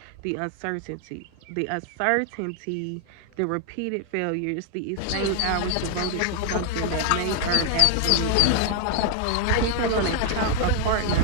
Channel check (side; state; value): both; different; correlation 0.00